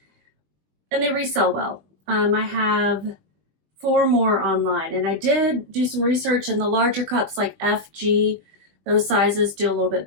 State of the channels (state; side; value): late; left; 20 ms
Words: and they resell well. I have 4 more online, and I did do some research, and the larger cups like FG, those sizes do a little